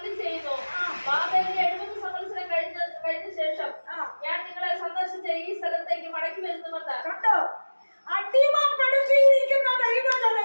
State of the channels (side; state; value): both; inverted; correlation -1.00